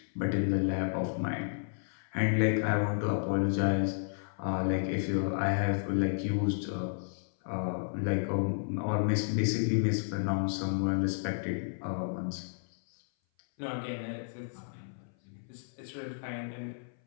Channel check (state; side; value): silent; right; 56 dB below the other